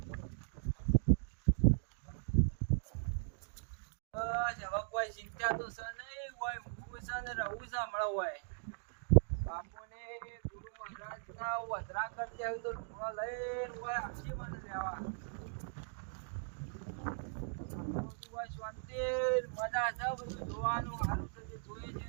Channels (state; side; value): silent; left; digital silence